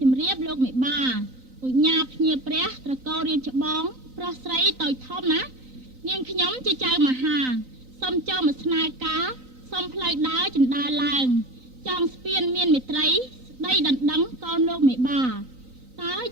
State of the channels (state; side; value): late; left; 3.9 ms